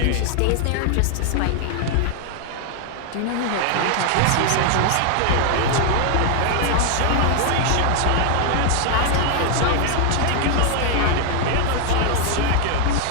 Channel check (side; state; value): both; different; correlation 0.00